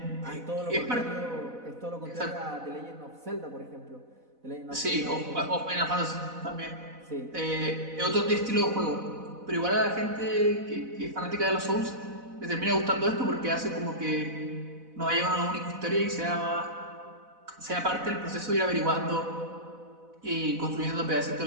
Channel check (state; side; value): late; left; 4.0 ms